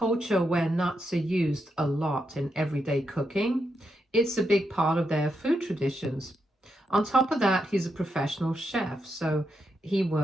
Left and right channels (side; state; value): both; normal; correlation 0.83